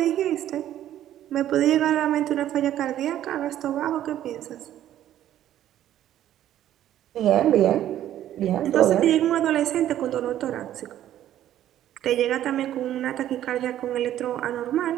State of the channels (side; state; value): left; quieter; 12.0 dB